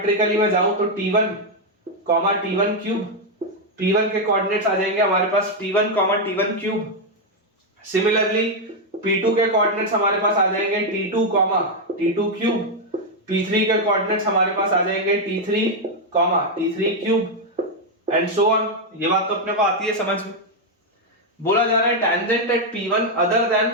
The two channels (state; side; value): normal; both; correlation 0.01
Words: मैं जाऊं तो T1, T1 क्यूब। P1 के कोऑर्डिनेट्स आ जाएंगे हमारे पास T1, T1 cube. Similarly P2 के कोऑर्डिनेट्स हमारे पास आ जाएंगे T2, T2 क्यूब। P3 के कोऑर्डिनेट्स हमारे पास आ जाएंगे T3, T3 cube and so on. ये बात तो अपने को आती है समझ में। बोला जा रहा है tangent at P1 other than